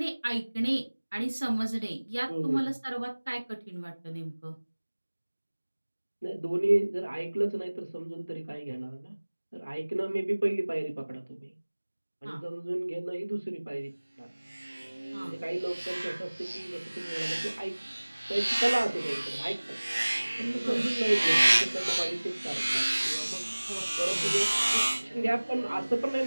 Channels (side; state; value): both; inverted; correlation -1.00